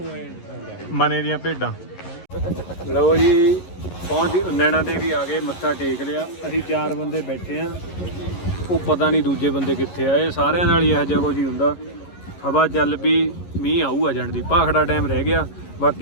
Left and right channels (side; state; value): right; late; 11 ms